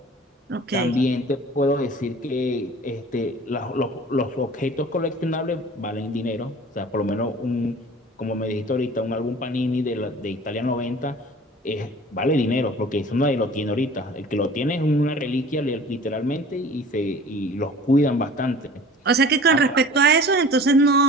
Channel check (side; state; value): both; normal; correlation 0.44